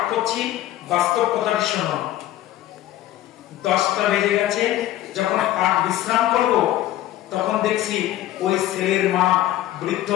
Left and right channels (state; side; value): quieter; right; 13.8 dB